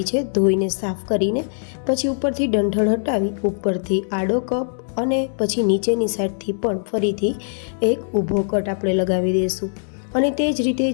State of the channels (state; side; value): silent; right; digital silence